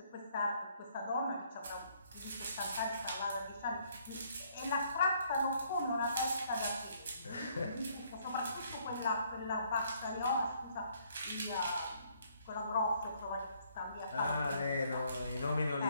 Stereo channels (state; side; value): inverted; both; correlation -0.66